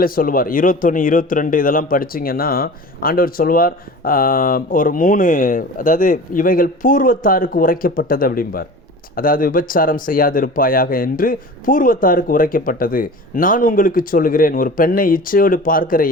சொல்லுவார். 21, 22 இதெல்லாம் படிச்சிங்கன்னா ஆண்டவர் சொல்லுவார், ஒரு 3, அதாவது இவைகள் பூர்வத்தாருக்கு உரைக்கப்பட்டது அப்படிம்பார். அதாவது விபச்சாரம் செய்யாதிருப்பாயாக என்று பூர்வத்தாருக்கு உரைக்கப்பட்டது. நான் உங்களுக்கு சொல்லுகிறேன், ஒரு பெண்ணை இச்சையோடு பார்க்கிற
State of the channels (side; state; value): both; normal; correlation 0.37